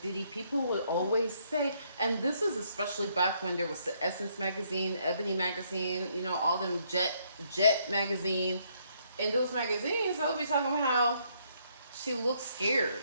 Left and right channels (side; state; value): both; inverted; correlation -0.71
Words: Diddy. People would always say, and this is especially back when there was the Essence magazine, Ebony magazine, you know, all them Jet magazine. In those magazines, I would be talking about how she looks scared.